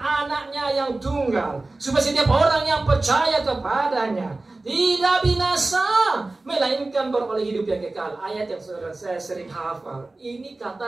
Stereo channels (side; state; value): left; quieter; 3.1 dB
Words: anaknya yang tunggal, supaya setiap orang yang percaya kepadanya tidak binasa, melainkan beroleh hidup yang kekal. Ayat yang saya sering hafal. Ini